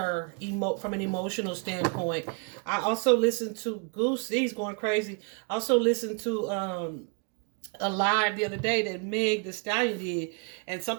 from an emotional standpoint. I also listened to Goosey's going crazy. I also listened to a live the other day that Meg the Stallion did, and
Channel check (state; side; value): quieter; left; 36.7 dB